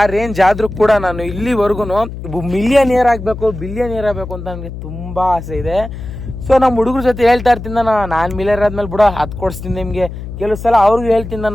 ರೇಂಜ್ ಆದರೂ ಕೂಡ ನಾನು ಇಲ್ಲಿವರೆಗೂ ಮಿಲಿಯನಿಯರ್ ಆಗಬೇಕು, ಬಿಲಿಯನಿಯರ್ ಆಗಬೇಕು ಅಂತ ನನಗೆ ತುಂಬ ಆಸೆ ಇದೆ. ಸೊ ನಮ್ಮ ಹುಡುಗರ ಜೊತೆ ಹೇಳ್ತಾ ಇರ್ತೀನಿ ನಾನು ಮಿಲಿಯರ್ ಆದ್ಮೇಲೆ ಬಿಡೋ ಅದು ಕೊಡಿಸ್ತೀನಿ ನಿಮಗೆ. ಕೆಲವು ಸಲ ಅವ್ರಿಗೂ ಹೇಳ್ತೀನಿ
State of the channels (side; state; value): left; noise; hum, 10 dB below the sound